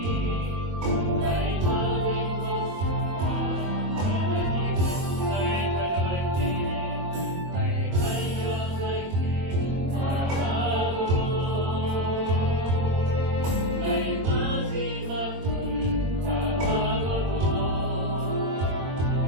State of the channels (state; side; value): late; left; 22 ms